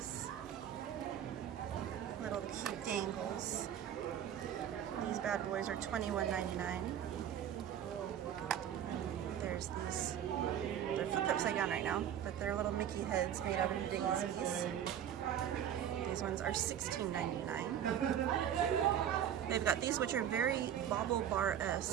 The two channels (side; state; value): left; quieter; 9.9 dB